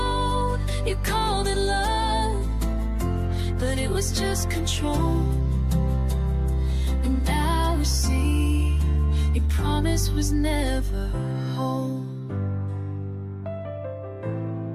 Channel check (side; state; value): both; identical; correlation 1.00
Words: you called it love, but it was just control. And now we see your promise was never whole.